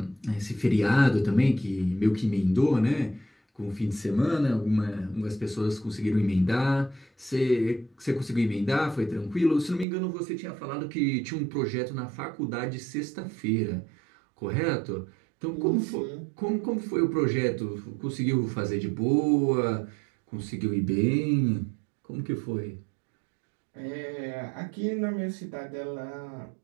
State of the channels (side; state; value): left; drops out; at 9.9 s